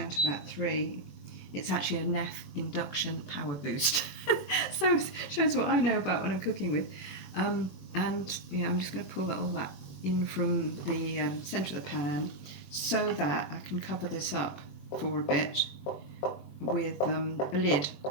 to about 3. It's actually a Neff induction power boost. So it shows what I know about what I'm cooking with. And yeah, I'm just going to pull all that in from the centre of the pan so that I can cover this up for a bit with a lid.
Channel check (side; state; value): right; late; 21 ms